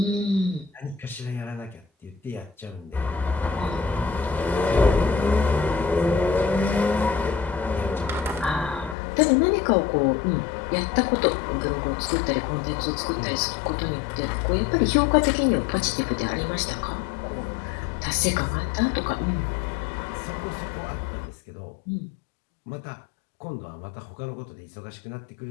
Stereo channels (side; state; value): right; drops out; at 9.0 s